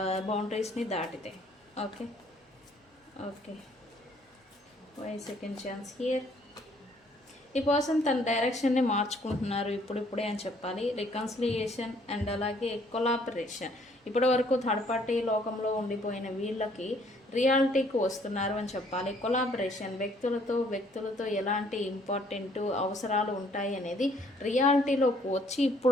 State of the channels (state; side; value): normal; both; correlation 0.63